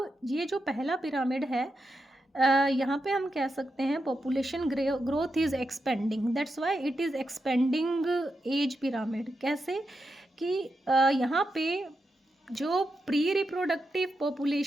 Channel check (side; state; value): both; normal; correlation 0.86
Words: ये जो पहला पिरामिड है, यहाँ पे हम कह सकते हैं population growth is expanding, that's why it is expanding age pyramid. कैसे कि यहाँ पे जो प्री रिप्रोडक्टिव